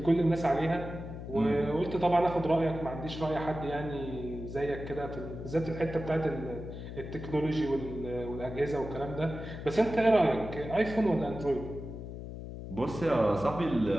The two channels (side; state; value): left; noise; hum, 9 dB below the sound